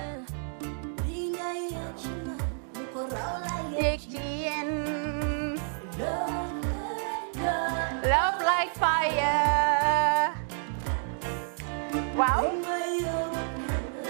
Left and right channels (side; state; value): left; silent; digital silence